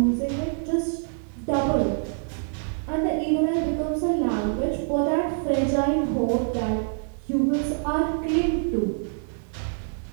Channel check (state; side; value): silent; left; digital silence